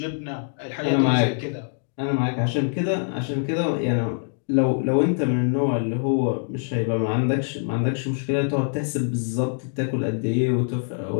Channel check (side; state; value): right; silent; digital silence